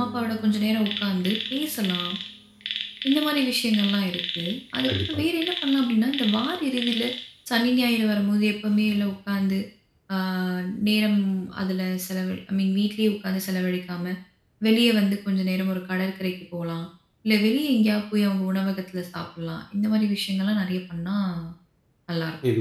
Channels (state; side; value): identical; both; correlation 1.00